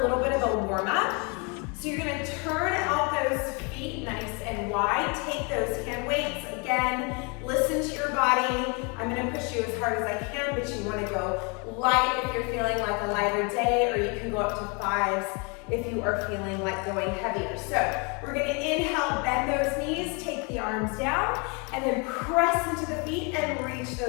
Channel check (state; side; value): quieter; right; 32.9 dB